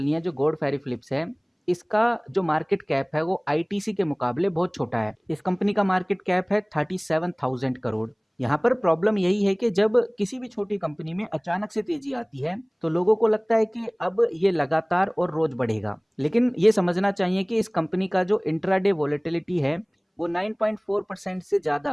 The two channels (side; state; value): both; identical; correlation 1.00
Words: है, जो गॉड फेरे फिलिप्स है इसका जो मार्केट कैप है वो आईटीसी के मुकाबले बहुत छोटा है। इस कंपनी का मार्केट कैप है 37,000 करोड़। यहाँ पर प्रॉब्लम यही है कि जब किसी भी छोटी कंपनी में अचानक से तेजी आती है तो लोगों को लगता है कि अब ये लगातार और रोज बढ़ेगा, लेकिन ये समझना चाहिए कि इस कंपनी का जो इंट्राडे वोलेटिलिटी है वो 9.4% से